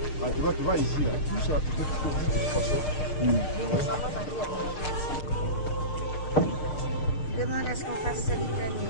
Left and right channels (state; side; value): late; right; 6.5 ms